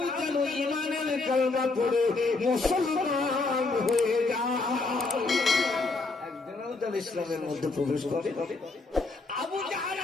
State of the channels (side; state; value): right; quieter; 3.6 dB